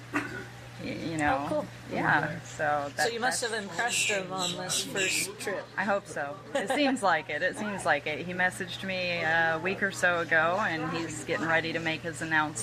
You know. Oh, cool. Yeah. So you must have impressed him on this first trip. I hope so. It seems like it. He messaged me a week or so ago, and he's getting ready to make his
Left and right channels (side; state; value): both; identical; correlation 1.00